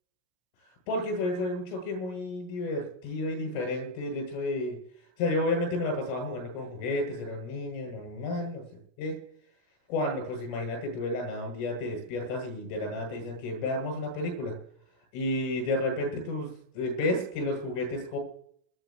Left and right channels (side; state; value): right; late; 16 ms